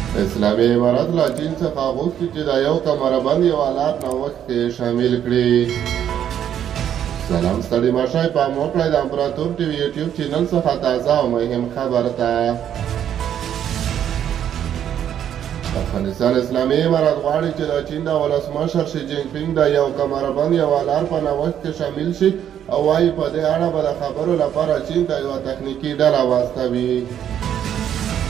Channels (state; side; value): quieter; left; 9.8 dB